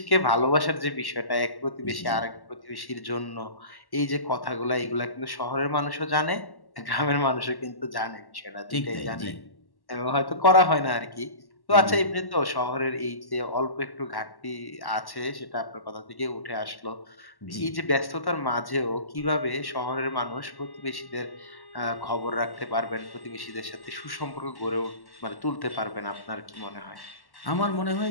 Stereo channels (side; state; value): right; late; 1.1 ms